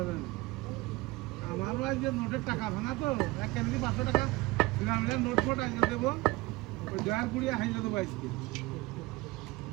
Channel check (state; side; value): quieter; left; 21.5 dB